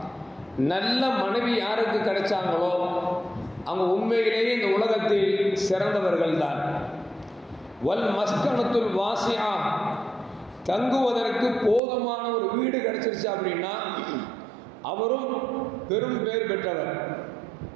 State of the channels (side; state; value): left; drops out; at 11.8 s